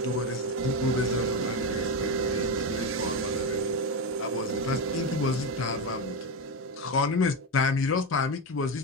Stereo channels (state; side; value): normal; both; correlation 0.13